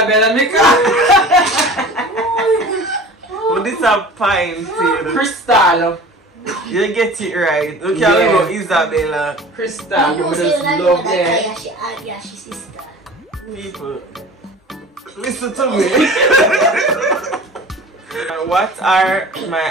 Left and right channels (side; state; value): both; normal; correlation 0.40